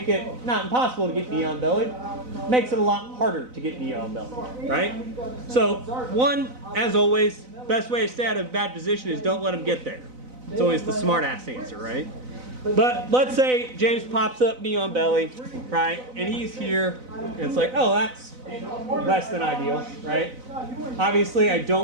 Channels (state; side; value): late; left; 4.0 ms